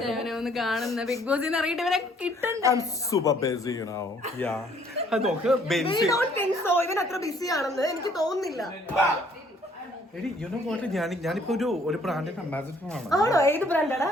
കാണുന്ന ബിഗ് ബോസ് സൂപ്പർ ബിസി നോക്ക് ബെൻസി ഇവൻ അത്ര ബിസി ആണെന്ന് എനിക്ക് തോന്നുന്നില്ല. എടി യു നോ വാട്ട്, ഞാനിപ്പോ ഒരു ബ്രാൻഡിന്റെ അംബാസിഡർ ആണ്. ആണോ? ഏത് ബ്രാൻഡാടാ?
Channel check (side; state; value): both; normal; correlation 0.61